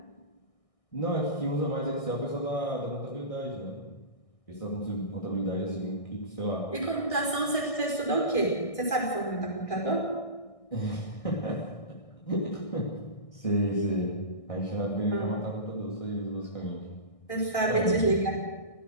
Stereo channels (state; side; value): late; right; 1.6 ms